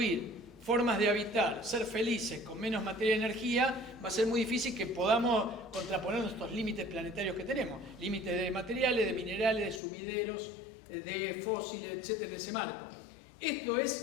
formas de habitar, ser felices con menos materia y energía, va a ser muy difícil que podamos contraponer estos límites planetarios que tenemos. Límites de materiales, de minerales, de sumideros, de fósiles, etcétera, en ese marco. Esto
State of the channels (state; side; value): drops out; right; at 9.8 s